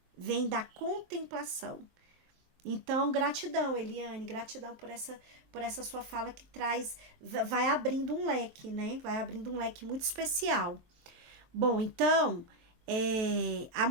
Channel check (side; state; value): left; late; 23 ms